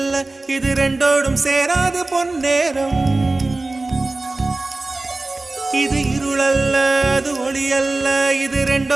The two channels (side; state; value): left; quieter; 3.1 dB